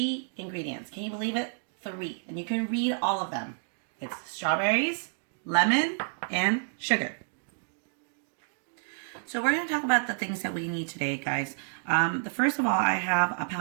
ingredients. Can you believe it? 3. And you can read all of them. It's strawberries, lemon, and sugar. So we're going to talk about the things that we need today, guys. The first of all, I have a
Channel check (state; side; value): silent; left; digital silence